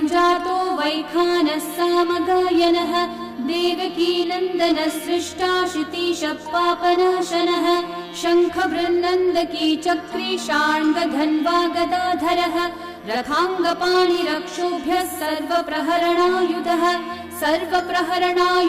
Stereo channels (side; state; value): both; identical; correlation 1.00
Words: जातो वैखानः सामगायनः देवकी नन्दनः सृष्टा शितीशः पापनाशनः शङ्खबृन्नन्दकी चक्री शार्ङ्गधन्वा गदाधरः रथाङ्गपाणिरक्षोभ्यः सर्वप्रहरणायुधः